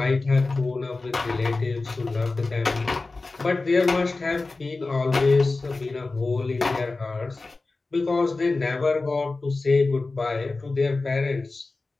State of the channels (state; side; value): quieter; right; 3.5 dB